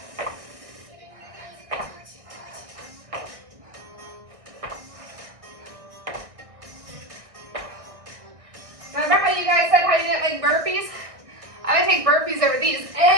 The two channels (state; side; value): late; left; 1.6 ms